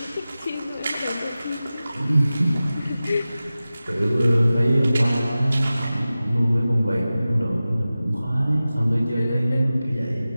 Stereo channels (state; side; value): inverted; both; correlation -0.96